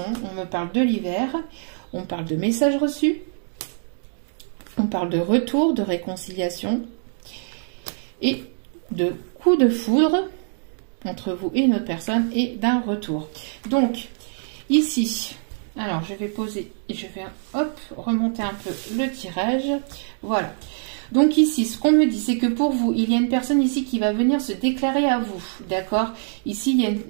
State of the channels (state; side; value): silent; left; digital silence